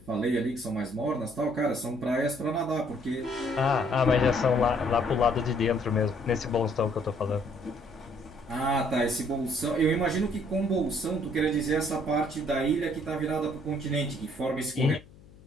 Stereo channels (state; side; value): noise; left; hum, 23 dB below the sound